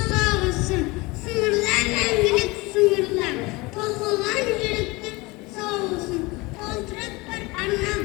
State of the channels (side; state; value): right; quieter; 23.8 dB